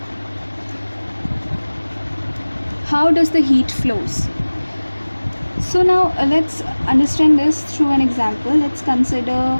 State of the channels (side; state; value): both; inverted; correlation -1.00